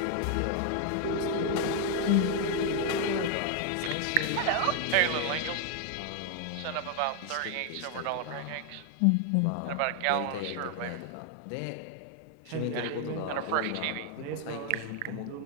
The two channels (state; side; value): different; both; correlation 0.00